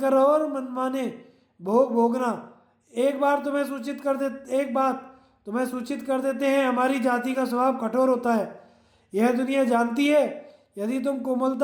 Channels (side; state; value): both; identical; correlation 1.00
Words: रहो और मनमाने भोग भोगना। एक बात तुम्हें सूचित कर देते हैं, हमारी जाति का स्वभाव कठोर होता है। यह दुनिया जानती है। यदि तुम